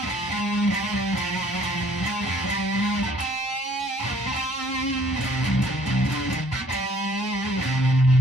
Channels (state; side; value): normal; both; correlation 0.59